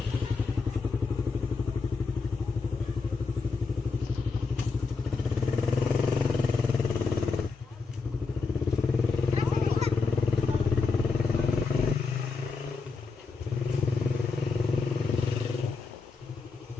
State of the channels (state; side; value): quieter; right; 4.4 dB